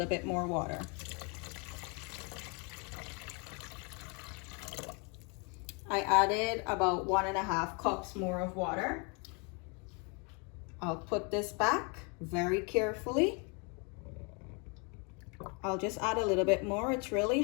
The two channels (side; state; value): right; quieter; 33.5 dB